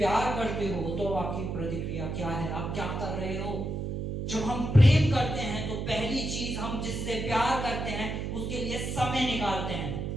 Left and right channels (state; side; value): noise; right; hum, 3 dB below the sound